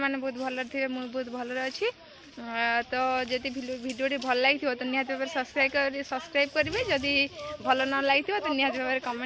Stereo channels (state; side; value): identical; both; correlation 1.00